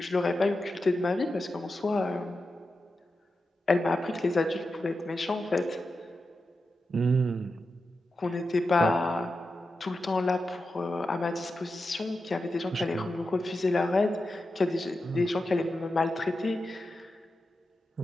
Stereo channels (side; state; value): both; normal; correlation 0.90